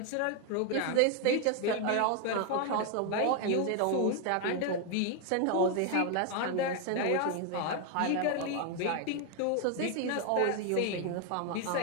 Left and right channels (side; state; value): both; different; correlation 0.01